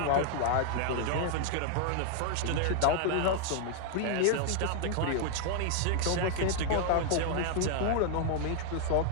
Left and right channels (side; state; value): both; different; correlation 0.00